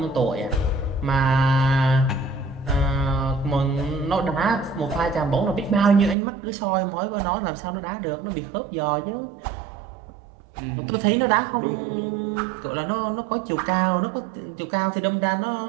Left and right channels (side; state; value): left; drops out; at 6.2 s